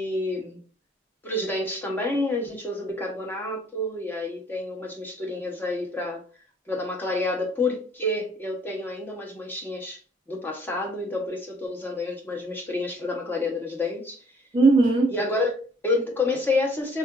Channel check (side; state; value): both; normal; correlation 0.58